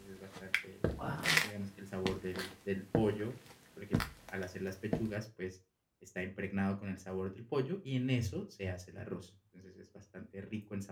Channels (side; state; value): both; identical; correlation 1.00